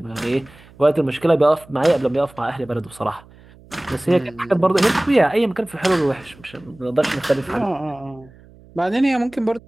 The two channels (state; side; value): noise; right; hum, 24 dB below the sound